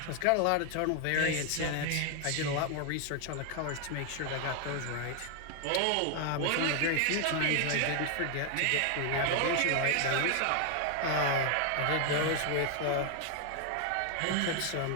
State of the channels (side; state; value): both; different; correlation 0.00